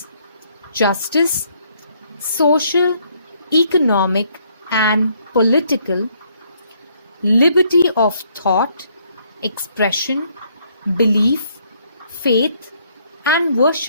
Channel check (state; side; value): inverted; both; correlation -0.68